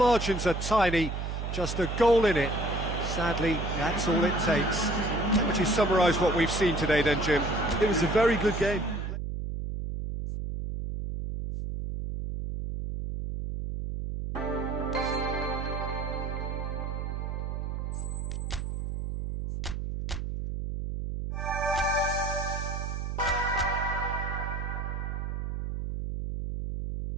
are tiny, just a goal in it. Sadly, that's all it takes. How would you summarise what we've seen today then, Jim? it was a very good game.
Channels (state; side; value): noise; right; hum, 4 dB below the sound